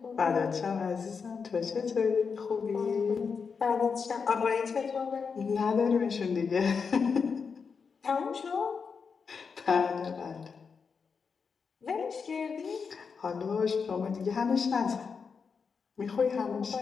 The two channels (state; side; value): quieter; right; 5.6 dB